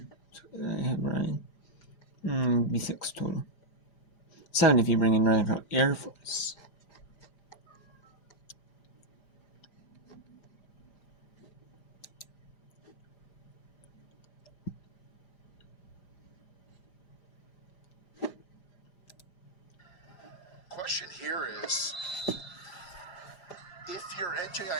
So I have Ryan. Be 6 total. 7 if you bring in Northern Colorado Air Force. Question here is, if you're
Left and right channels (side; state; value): right; late; 5.0 ms